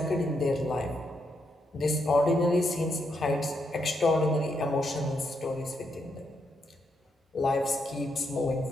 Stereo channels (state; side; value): normal; both; correlation 0.79